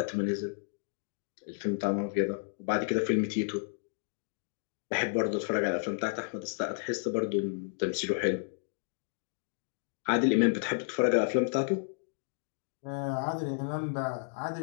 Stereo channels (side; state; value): right; silent; digital silence